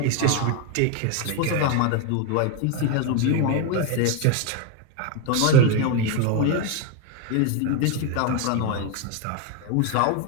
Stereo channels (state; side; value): different; both; correlation 0.02